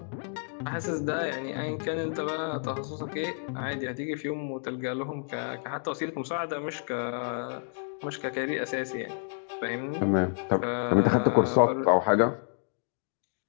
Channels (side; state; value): right; silent; digital silence